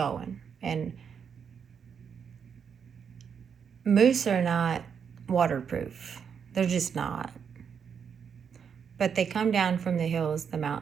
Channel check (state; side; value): quieter; left; 7.0 dB